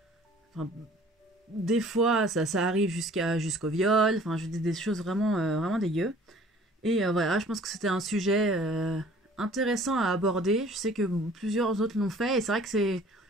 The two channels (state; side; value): normal; both; correlation 0.52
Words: des fois ça arrive jusqu'au viol, des choses vraiment dégueu. Et voilà, je pense que c'était un sujet intéressant à aborder. Je sais que plusieurs autres l'ont fait, et c'est vrai que